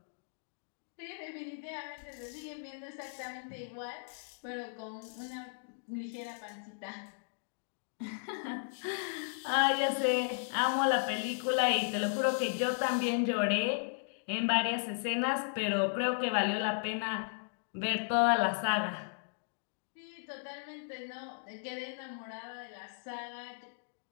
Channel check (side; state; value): right; silent; digital silence